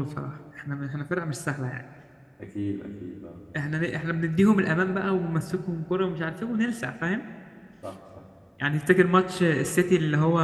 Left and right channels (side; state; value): both; identical; correlation 1.00